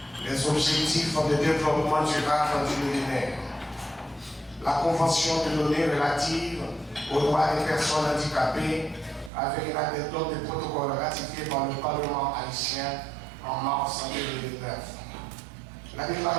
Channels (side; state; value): left; drops out; at 9.3 s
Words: les objectifs de développement durable du millénaire, la Convention de l'ONU relative aux droits des personnes handicapées avec la méthode de protocole ratifié par le Parlement haïtien en mars 2009. La